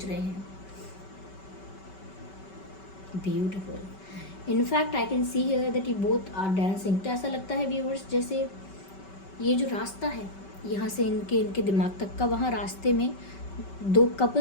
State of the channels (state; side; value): late; right; 5.2 ms